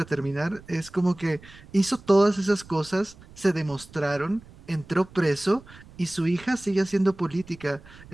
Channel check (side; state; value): right; noise; rumble, 21 dB below the sound